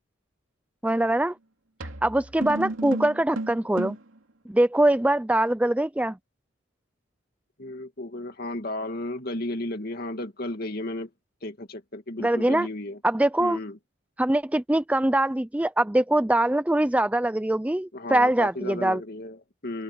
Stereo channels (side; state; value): both; normal; correlation 0.89